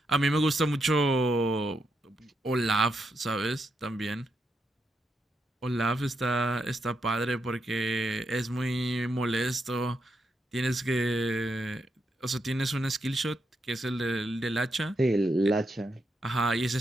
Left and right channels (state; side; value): normal; both; correlation 0.82